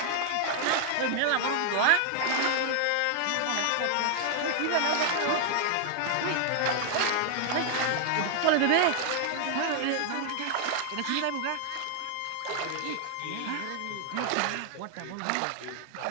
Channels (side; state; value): both; different; correlation 0.00